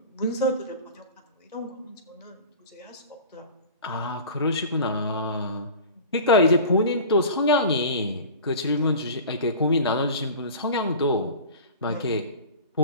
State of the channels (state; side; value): inverted; both; correlation -0.38